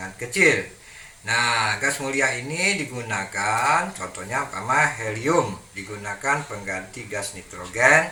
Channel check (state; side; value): identical; both; correlation 1.00